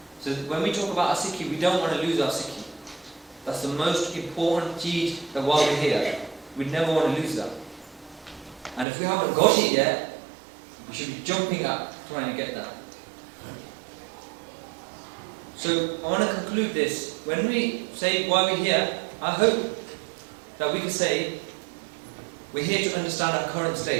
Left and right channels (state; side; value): drops out; left; at 8.8 s